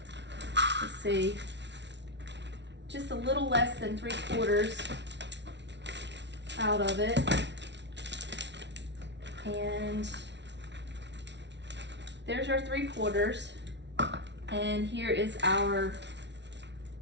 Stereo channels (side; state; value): left; late; 0.51 ms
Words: let's see, just a little less than 3/4 out of it. And there's our 3/4. And here is our